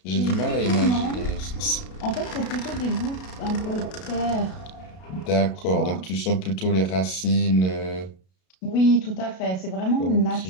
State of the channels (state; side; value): late; right; 32 ms